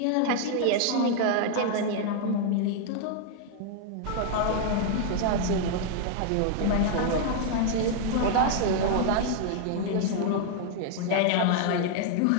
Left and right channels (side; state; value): both; different; correlation 0.00